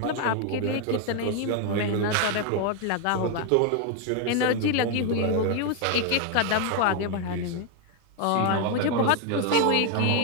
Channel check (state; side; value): different; both; correlation 0.01